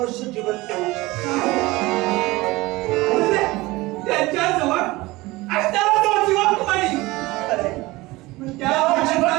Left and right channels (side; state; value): left; quieter; 20.6 dB